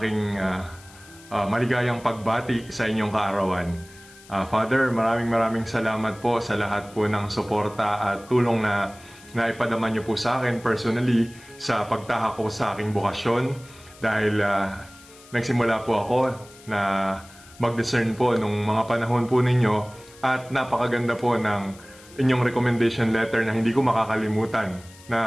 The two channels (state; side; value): noise; left; hiss, 23 dB below the sound